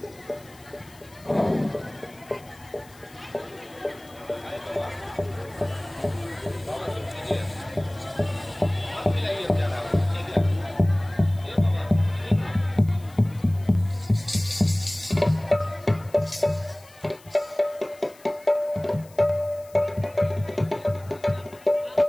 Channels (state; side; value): noise; left; hiss, 25 dB below the sound